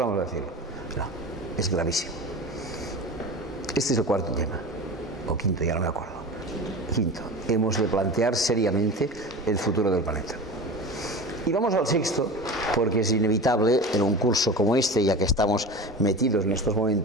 a decirlo. No, es gravísimo. Este es el cuarto tema. O quinto, ya no me acuerdo. Quinto, hemos de plantear seriamente el futuro del planeta. Y vamos al sexto, porque es inevitable en un curso como este, ya que estamos metidos en estos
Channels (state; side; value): normal; both; correlation 0.32